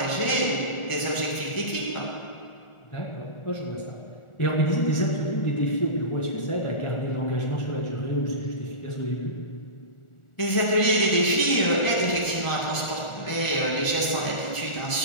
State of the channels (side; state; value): right; late; 1.4 ms